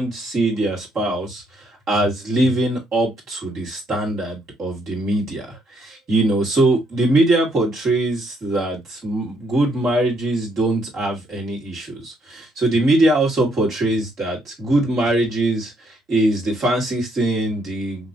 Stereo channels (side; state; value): both; normal; correlation 0.72